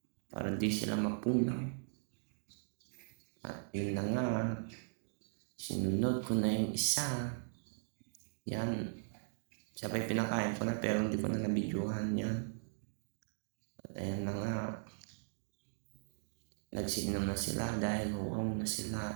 Para di sila mapunaw. At yun na nga. Sinunod ko na yung isa. Yan. Sabay pinakain ko na pero hindi ko na nabidyohan yan. At ayan na nga. Nagsinom na sila dahil wow na sila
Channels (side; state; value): left; silent; digital silence